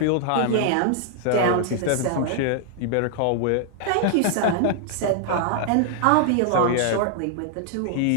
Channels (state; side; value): different; both; correlation 0.00